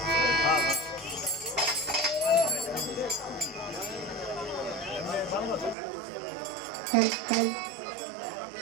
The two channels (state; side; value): drops out; left; at 5.8 s